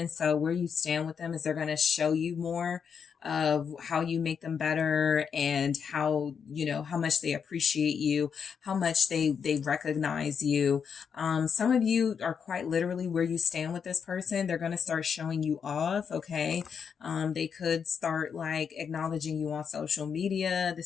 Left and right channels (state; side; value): quieter; right; 6.8 dB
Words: so where you stand with them is they're going to show you more of how you make them better, and how, you know, how much they appreciate you, how much they recognize you. Some of you are quite literally where you stand with this person. They're going to start showing you off. Okay. They could start like acknowledging you on social media.